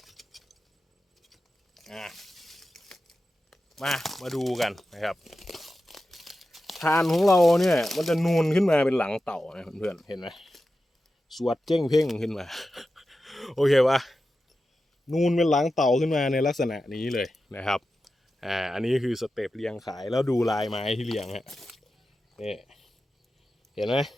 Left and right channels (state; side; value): normal; both; correlation 0.92